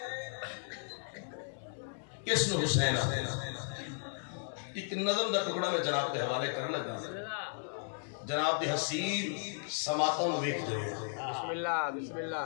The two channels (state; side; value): silent; right; digital silence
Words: کس نے حسین ایک نظم دا ٹکڑا میں جناب کے حوالے کر لگا جناب دی حسین سماعتوں ویکھ دے بسم اللہ بسم